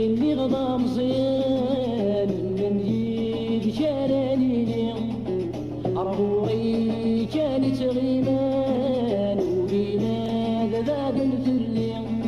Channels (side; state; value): both; identical; correlation 1.00